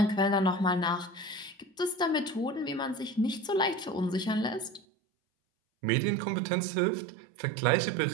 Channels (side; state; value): left; drops out; at 4.8 s